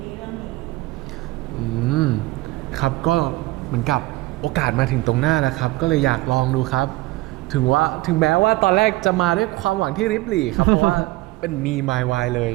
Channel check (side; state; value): left; quieter; 19.6 dB